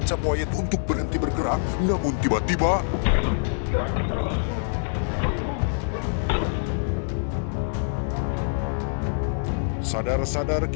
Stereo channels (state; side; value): silent; right; digital silence